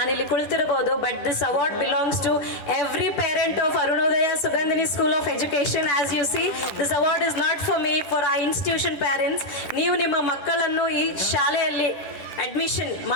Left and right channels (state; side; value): late; right; 10 ms